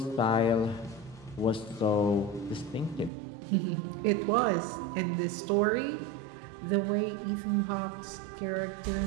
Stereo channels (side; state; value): left; drops out; at 3.1 s